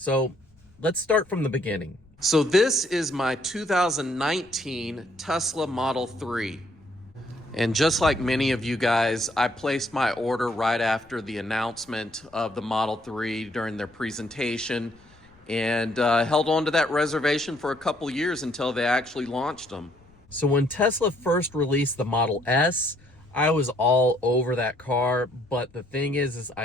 let's start from the beginning. So this is my 2019 Tesla Model 3. And just like many of you guys, I placed my order right after the announcement of the Model 3 during their presentation and held on to that reservation for a couple years until they actually launched them. So when Tesla first released the Model S, I was all over that car, but the thing is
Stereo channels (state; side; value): noise; left; rumble, 29 dB below the sound